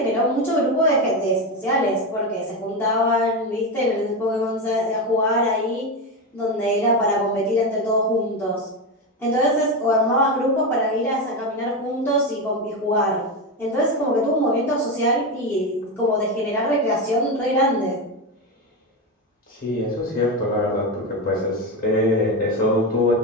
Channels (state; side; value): normal; both; correlation 0.14